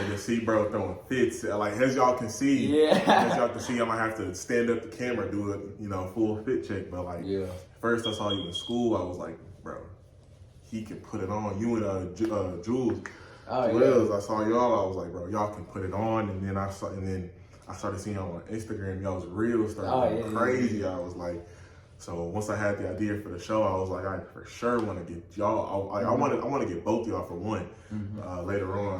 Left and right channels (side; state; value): both; identical; correlation 1.00